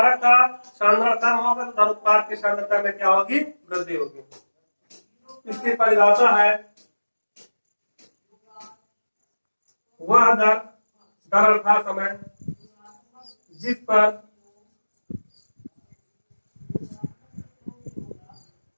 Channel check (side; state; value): both; inverted; correlation -1.00